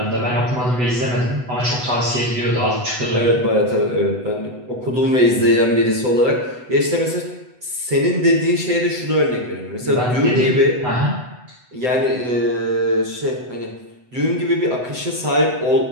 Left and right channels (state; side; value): late; left; 8.0 ms